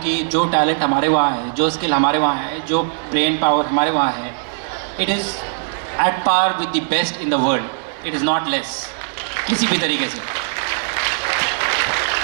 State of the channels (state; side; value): silent; left; digital silence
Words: कि जो टैलेंट हमारे वहाँ है, जो स्किल हमारे वहाँ है, जो ब्रेन पावर हमारे वहाँ है, it is at par with the best in the world. It is not less किसी भी तरीके से.